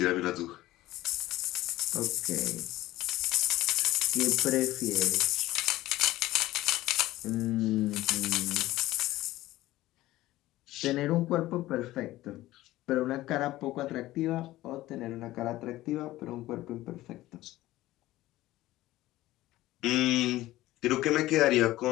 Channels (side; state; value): right; quieter; 16.5 dB